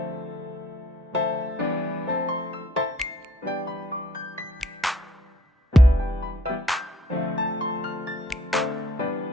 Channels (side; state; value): both; normal; correlation 0.60